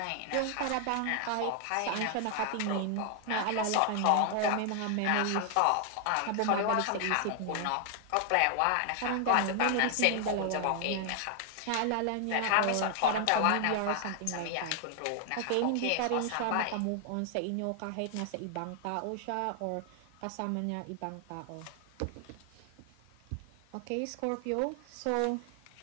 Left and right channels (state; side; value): different; both; correlation 0.00